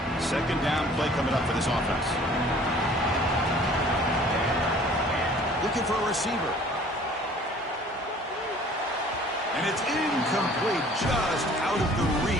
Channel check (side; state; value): both; normal; correlation 0.52